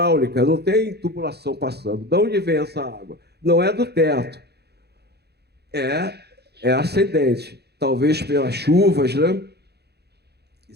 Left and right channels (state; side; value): late; left; 0.48 ms